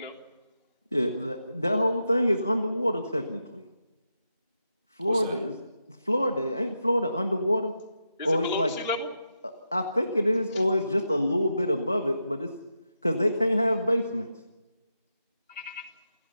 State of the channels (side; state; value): both; inverted; correlation -0.86